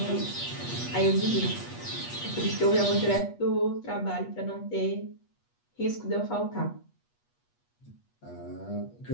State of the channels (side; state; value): right; late; 8.3 ms